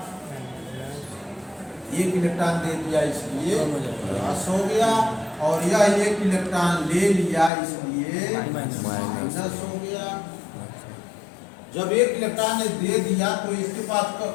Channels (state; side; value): drops out; right; at 7.5 s